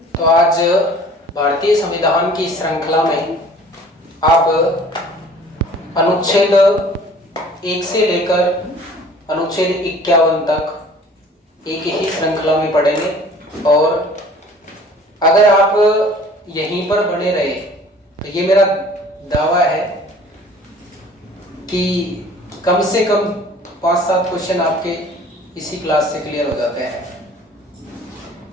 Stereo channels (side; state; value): both; normal; correlation 0.50